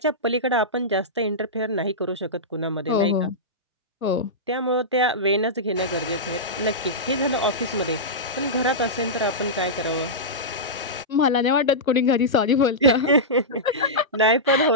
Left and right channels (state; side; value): normal; both; correlation -0.13